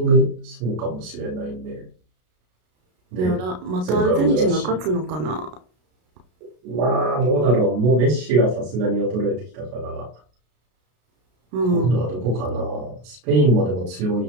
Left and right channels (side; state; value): left; late; 33 ms